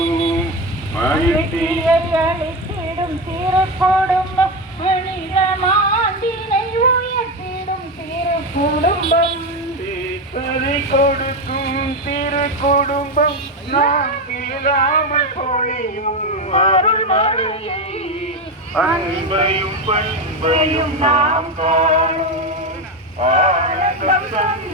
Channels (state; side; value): normal; both; correlation 0.14